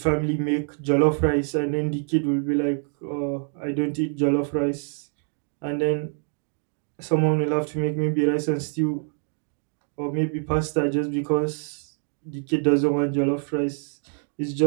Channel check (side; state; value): left; silent; 55 dB below the other